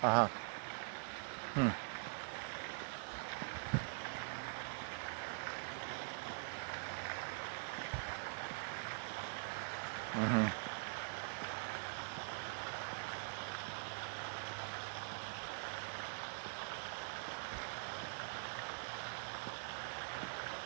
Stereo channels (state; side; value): silent; left; digital silence